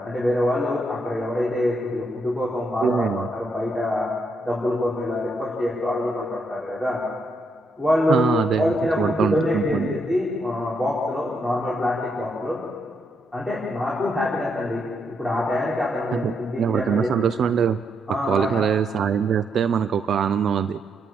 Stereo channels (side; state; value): both; normal; correlation 0.78